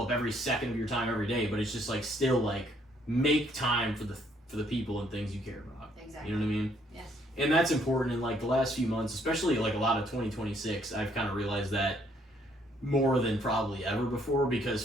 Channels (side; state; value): both; normal; correlation 0.67